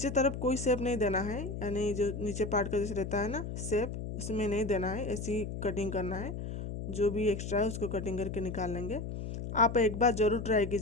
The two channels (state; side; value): noise; left; hum, 6 dB below the sound